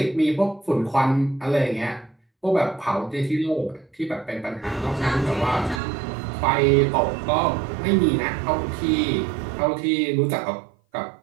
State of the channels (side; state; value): left; drops out; at 5.8 s